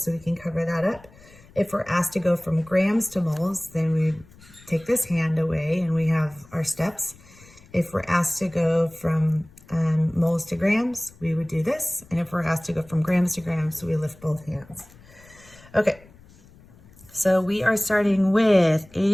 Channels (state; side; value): noise; left; rumble, 25 dB below the sound